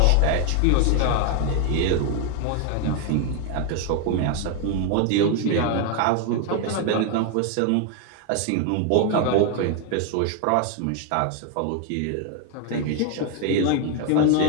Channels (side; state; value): both; different; correlation 0.01